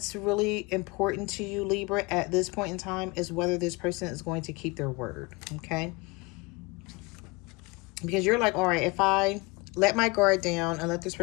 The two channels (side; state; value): right; quieter; 25.8 dB